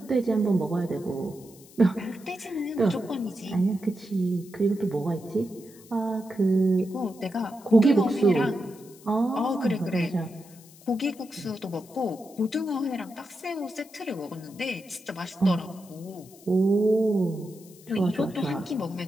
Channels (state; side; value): noise; left; hiss, 23 dB below the sound